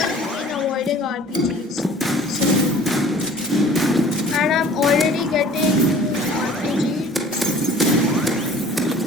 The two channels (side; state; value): both; normal; correlation 0.48